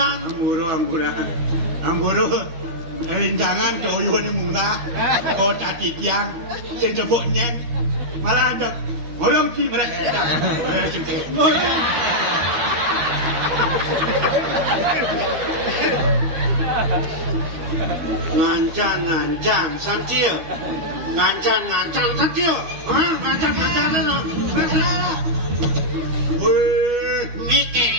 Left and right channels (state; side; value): late; left; 12 ms